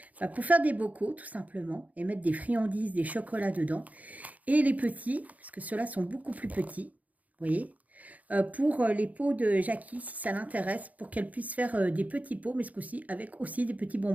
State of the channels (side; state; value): left; late; 0.074 ms